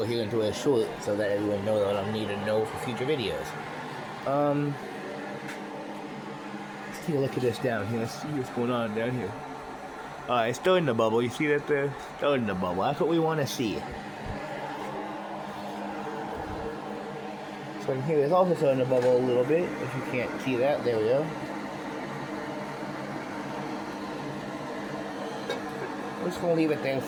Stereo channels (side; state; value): both; identical; correlation 1.00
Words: here into a short so that everyone knows what I need to know for future videos. Let's take a look at this down here. Let's see what's going on down here. It's starting to bubble. You see that there? Starting to bubble. That's what we want to see. So in here it's also starting to bubble a little bit. If you can't see that, there we go. We're just going to leave it there